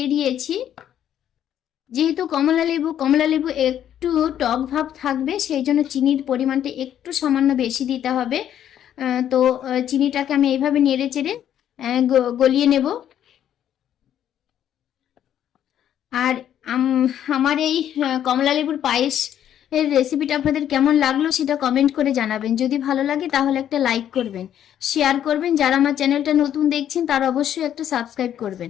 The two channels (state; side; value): quieter; right; 10.4 dB